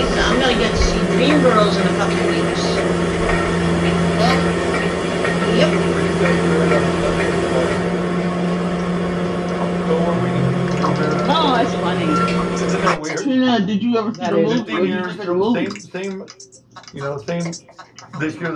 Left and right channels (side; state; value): both; identical; correlation 1.00